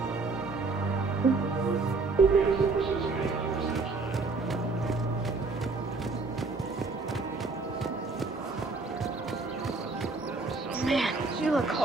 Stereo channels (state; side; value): quieter; left; 3.8 dB